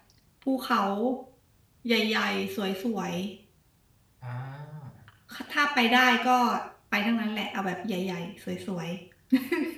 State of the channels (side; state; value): both; identical; correlation 1.00